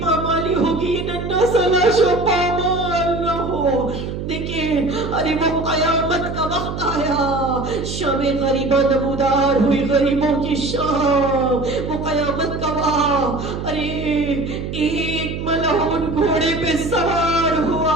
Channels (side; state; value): right; noise; hum, 6 dB below the sound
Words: پامالی ہوگی، ننھا سا لاشوں پامال نہ ہو۔ دیکھیں ارے وہ قیامت کا وقت آیا، شام غریبہ نمودار ہوئی، غریبوں کی شام، وہ قیامت کا وقت۔ ارے ایک ملعون گھوڑے پہ سوار ہوا،